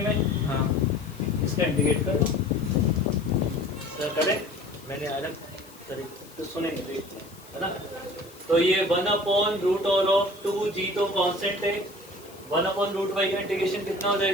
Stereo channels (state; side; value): noise; left; hiss, 23 dB below the sound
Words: में, इसका इंटीग्रेट कर दो। करें मैंने अलग तरीके तो सुनेंगे, है ना? तो ये 1 upon root over of 2g तो कांस्टेंट है, 1 अपॉन रूट y का इंटीग्रेशन कितना हो